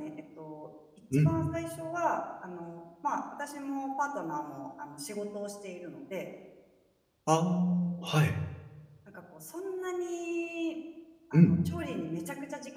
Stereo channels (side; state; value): both; identical; correlation 1.00